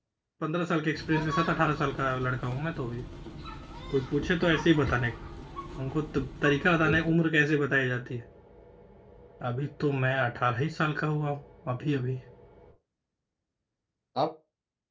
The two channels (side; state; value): both; identical; correlation 1.00